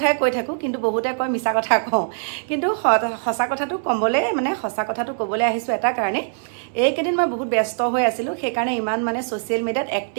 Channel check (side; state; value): left; silent; 64 dB below the other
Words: কৈ থাকো কিন্তু বহুতে কয় মিছা কথা কওঁ কিন্তু সঁচা কথাটো কমলে সঁচা কথাটো ক'বলৈ আহিছো এটা কাৰণে এইকেদিন মই বহুত ব্যস্ত হৈ আছিলো সেই কাৰণে ইমান সোশ্যাল মিডিয়াত